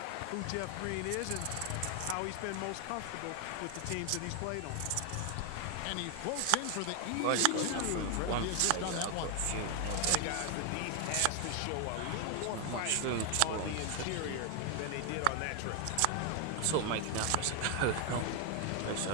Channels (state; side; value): different; both; correlation 0.00